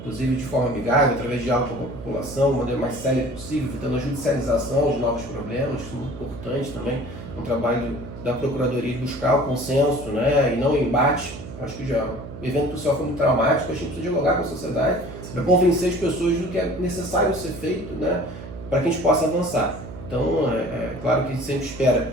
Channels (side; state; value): right; noise; hum, 12 dB below the sound